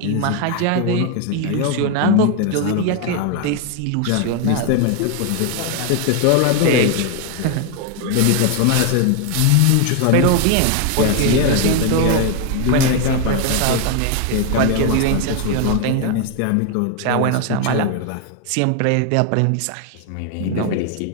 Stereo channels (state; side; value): different; both; correlation 0.01